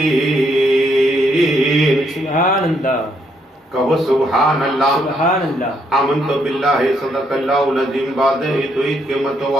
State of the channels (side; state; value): both; normal; correlation 0.73